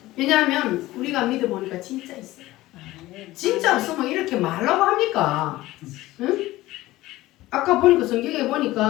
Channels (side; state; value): right; quieter; 17.3 dB